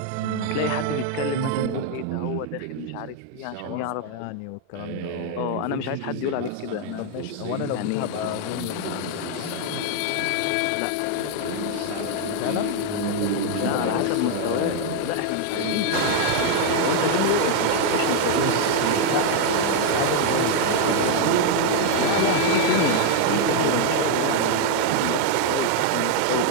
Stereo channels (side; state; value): both; different; correlation 0.00